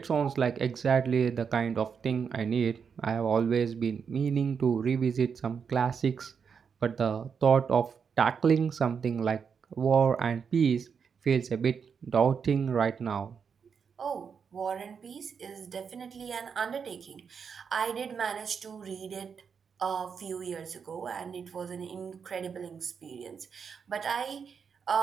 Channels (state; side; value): quieter; left; 6.4 dB